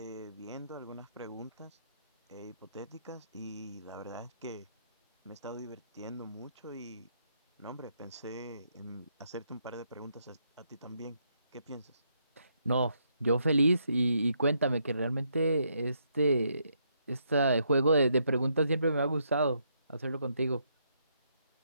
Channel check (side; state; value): both; inverted; correlation -0.76